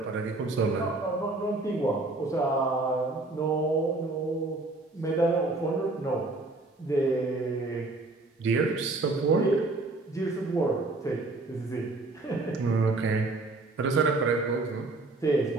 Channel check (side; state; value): left; quieter; 3.1 dB